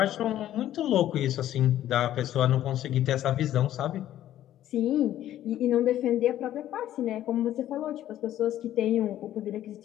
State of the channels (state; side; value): quieter; right; 12.5 dB